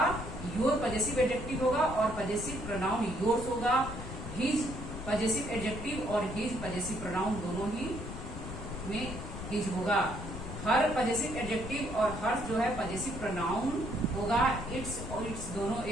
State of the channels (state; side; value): noise; left; rumble, 8 dB below the sound